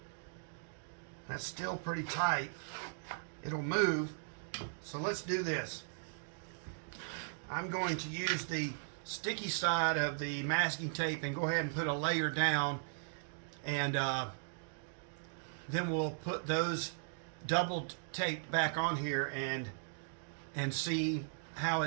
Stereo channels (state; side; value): silent; left; digital silence